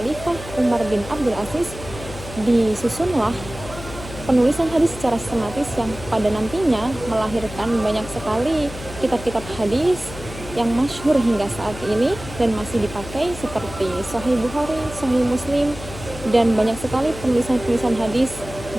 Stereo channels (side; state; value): left; noise; hum, 13 dB below the sound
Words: Umar bin Abdul Aziz disusunlah penulisan hadis secara sistematis yang pada nantinya melahirkan banyak sekali kitab-kitab hadis yang masyhur hingga saat ini dan masih dipakai seperti Sahih Bukhari, Sahih Muslim, dan banyak sekali penulisan-penulisan hadis